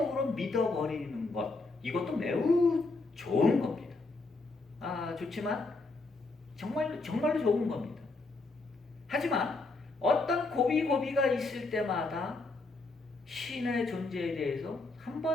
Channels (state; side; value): quieter; right; 3.4 dB